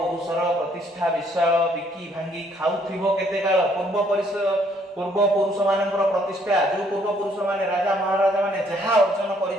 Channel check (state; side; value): normal; both; correlation 0.66